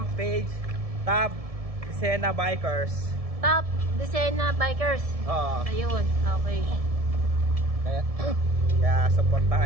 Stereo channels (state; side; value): late; left; 1.7 ms